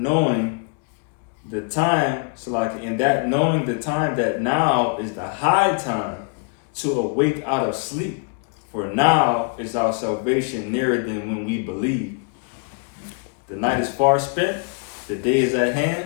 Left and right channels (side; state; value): right; quieter; 36.6 dB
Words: the time that now is the high time to awake out of sleep. For now is our salvation nearer than when we believe. The night is far spent, the day is at hand.